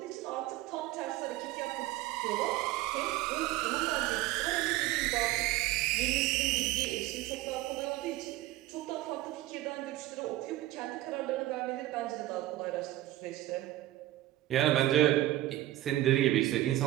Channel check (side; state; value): left; quieter; 15.7 dB